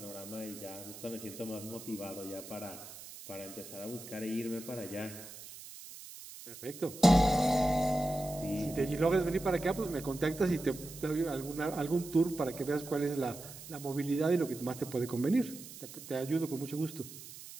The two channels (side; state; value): right; noise; hiss, 14 dB below the sound